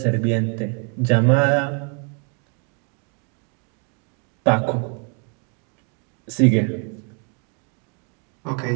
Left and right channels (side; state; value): left; quieter; 38.9 dB